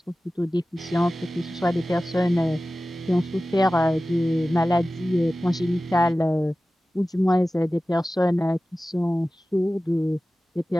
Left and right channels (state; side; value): normal; both; correlation 0.96